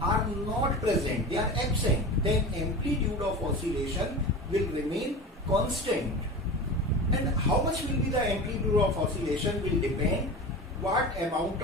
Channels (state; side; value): normal; both; correlation 0.31